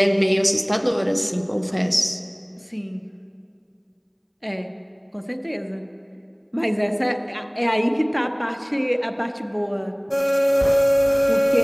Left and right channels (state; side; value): identical; both; correlation 1.00